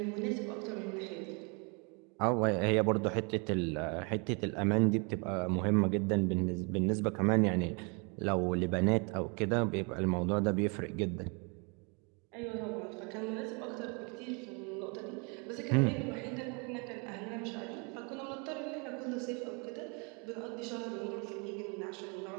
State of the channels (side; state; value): left; quieter; 33.2 dB